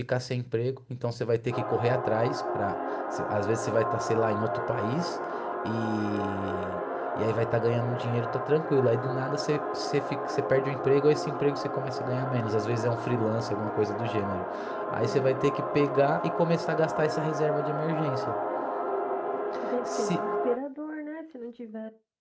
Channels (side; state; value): both; identical; correlation 1.00